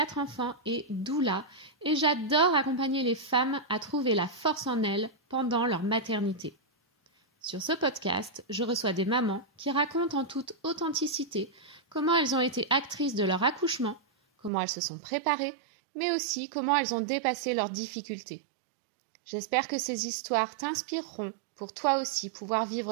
enfants et doula, et j'adore accompagner les femmes à trouver la force en elles pendant leur maternité. Sur ce podcast, je reçois des mamans qui racontent en toute authenticité comment elles ont été actrices de leur accouchement, comment elles se sont préparées, mais aussi comment elles ont dépassé leurs difficultés. J'espère que ces histoires t'inspireront pour toi aussi pouvoir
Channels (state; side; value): drops out; left; at 14.5 s